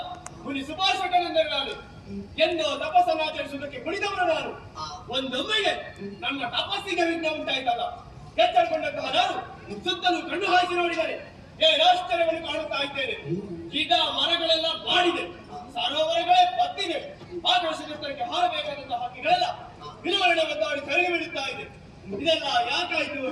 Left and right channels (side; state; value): both; identical; correlation 1.00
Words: ಮುನಿ ಸುಭಾಷಕನೆಂದರೆ ನಾನು ಎಂದು ತಪಸ್ಸನ್ನು ಆಚರಿಸುವುದಕ್ಕೆ ಕುಳಿತವನು ನಾನು. ಒಂದೊಮ್ಮೆಗೆ ನನ್ನ ತಪಸ್ಸಿಗೆ ವಿಘ್ನ ಉಂಟಾಯ್ತಲ್ಲ, ಎಚ್ಚರಗೊಂಡಂತಹ ನಾನು ಸುತ್ತಲೂ ಕಣ್ಣು ಹಾಯಿಸಿ ನೋಡಿದರೆ ಆಶ್ಚರ್ಯವನ್ನು ಕಾಣುತ್ತಾ ಇದ್ದೇನೆ. ಗಿಡ ಮರಗಳೆಲ್ಲ ಬಾಡಿದೆ, ಸರೋವರಗಳೇ ಬತ್ತಿದೆ, ಆಕಾಶಕ್ಕೆ ಹಾರಬೇಕಾದಂತಹ ಹಕ್ಕಿಗಳೆಲ್ಲ ವಿಲವರಣೆ ಒದ್ದಾಡಿ ಕರಗಿ ಬಿಡುತ್ತಾ ಇದೆ. ಇದೆಲ್ಲ ಯಾಕಾಯ್ತು,